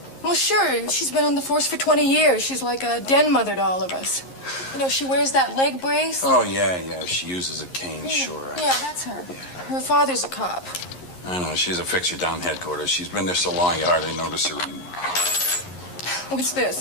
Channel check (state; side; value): late; right; 11 ms